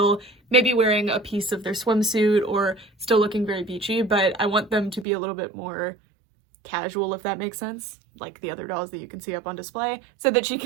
maybe wearing a piece of their swimsuit or still looking very beachy, but I want them to be a little bit more casual, if that makes sense, like the other dolls that you can see up on display, so that she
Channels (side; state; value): left; drops out; at 5.1 s